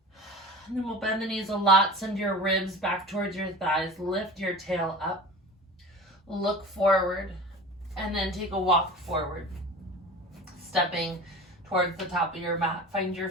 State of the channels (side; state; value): both; normal; correlation 0.36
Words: And then we'll bend the knees a lot, send your ribs back towards your thighs, lift your tail up, look forward, and then take a walk forward, stepping towards the top of your mat. Find your